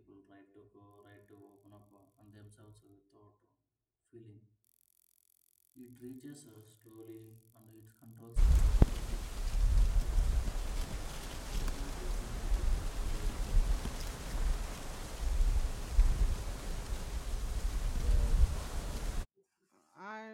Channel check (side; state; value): both; identical; correlation 1.00